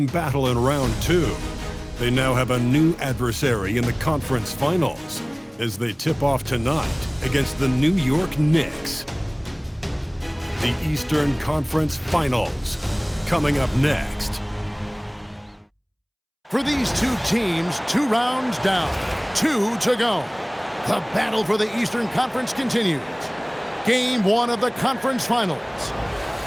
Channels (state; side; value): identical; both; correlation 1.00